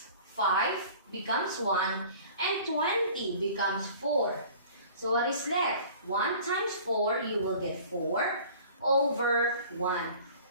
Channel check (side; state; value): both; inverted; correlation -0.46